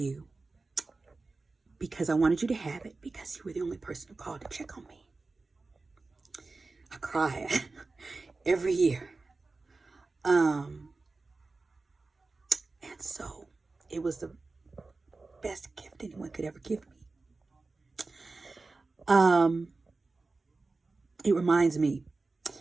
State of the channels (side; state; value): left; quieter; 3.7 dB